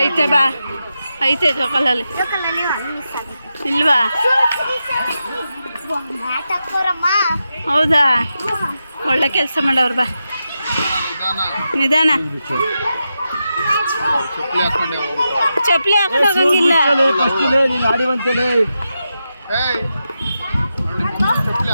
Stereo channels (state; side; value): inverted; both; correlation -0.88